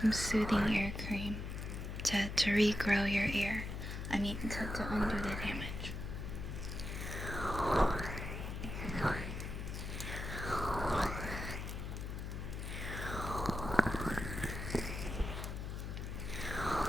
soothing ear cream to regrow your ear. I mean, to undo the damage.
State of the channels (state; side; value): noise; left; hum, 5 dB below the sound